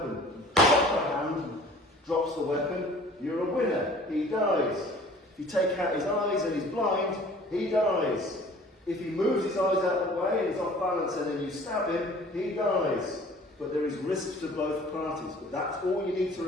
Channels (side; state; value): both; normal; correlation 0.49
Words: Drop a hand, drops the weapon, you're a winner. He dies. If you take out his eyes and he's blind, he dies. If he moves his eyes out of the way and he's off balance and then you stab him, he dies. But there is risk to both parties. But that's all you need to